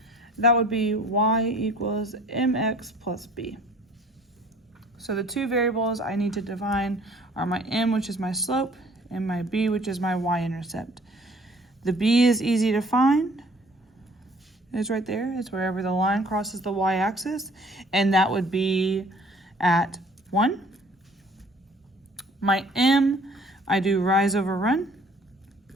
That would be y equals mx plus b. So the two variables I need to define are my m, which is my slope, and my b, which is my y-intercept. The b is easy to find. It's right there. It's wherever the line crosses the y-axis, and that would be at 1. My m, I do rise over run.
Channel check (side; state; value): both; normal; correlation 0.54